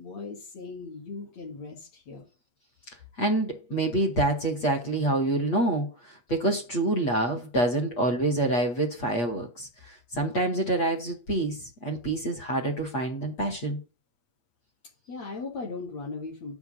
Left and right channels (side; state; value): right; late; 8.4 ms